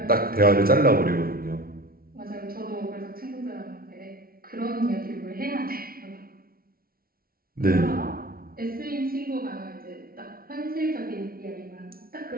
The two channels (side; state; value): left; late; 0.43 ms